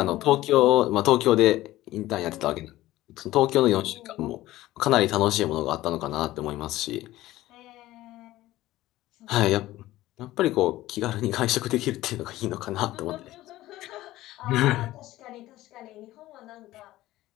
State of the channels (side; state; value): right; quieter; 16.2 dB